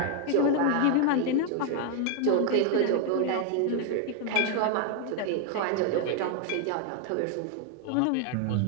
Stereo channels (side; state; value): both; different; correlation 0.00